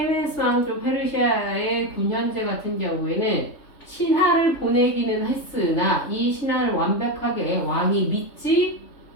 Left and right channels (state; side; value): late; right; 3.4 ms